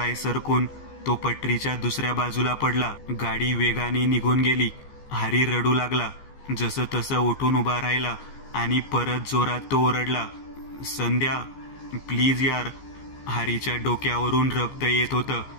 सरकून तो पटरीच्या दुसऱ्या बाजूला पडला. गाडी वेगाने निघून गेली. हरी रडू लागला. जसं तसं उठून उभा राहिला आणि परत जोरात तो ओरडला, संध्या प्लीज यार. हरीच्या डोक्यावरून रक्त येत होतं.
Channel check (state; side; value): late; right; 15 ms